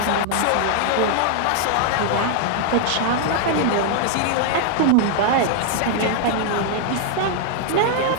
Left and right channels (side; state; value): both; different; correlation 0.00